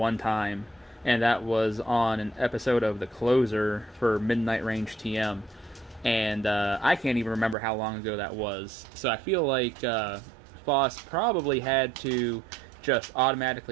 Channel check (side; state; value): left; drops out; at 7.6 s